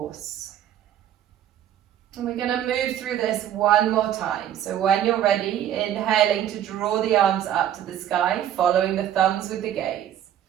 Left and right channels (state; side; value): quieter; left; 10.9 dB